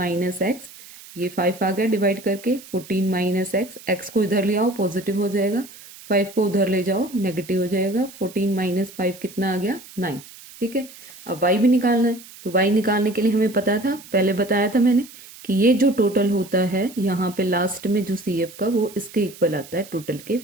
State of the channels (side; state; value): right; noise; hiss, 19 dB below the sound